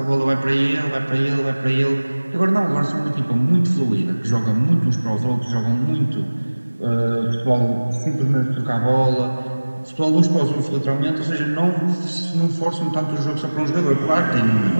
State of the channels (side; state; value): both; inverted; correlation -1.00